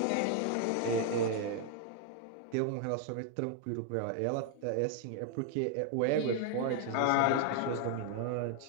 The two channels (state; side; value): different; both; correlation 0.00